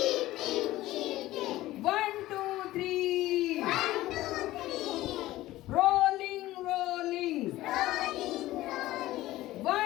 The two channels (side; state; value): right; quieter; 16.4 dB